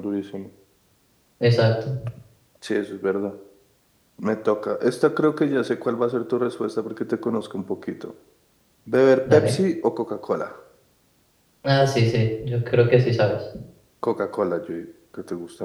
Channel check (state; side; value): identical; both; correlation 1.00